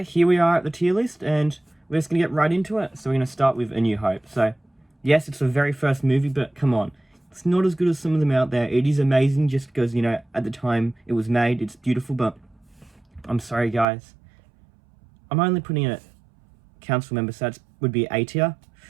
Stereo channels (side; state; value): left; drops out; at 13.9 s